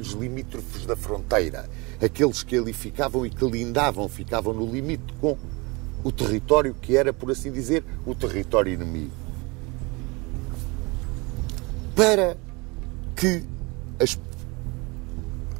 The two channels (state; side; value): quieter; left; 26.7 dB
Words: limítrofes da fronteira. Aqueles que ali ficavam e que lindavam, ficavam no limite com o território que era, por assim dizer, o território inimigo. Para que